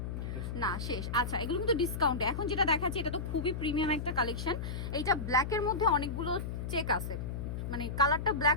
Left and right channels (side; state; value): left; noise; hum, 5 dB below the sound